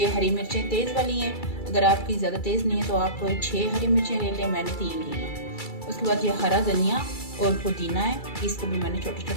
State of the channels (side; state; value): right; late; 2.3 ms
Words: हरी मिर्चें तेज़ वाली हैं, अगर आपकी ज़्यादा तेज़ नहीं है तो आप 6 हरी मिर्चें ले लें, मैंने 3 ली हैं। उसके बाद ये हरा धनिया और पुदीना है, इसको भी मैंने छोटा